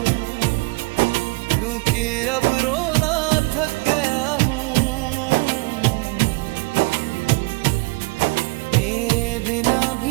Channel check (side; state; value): left; quieter; 26.3 dB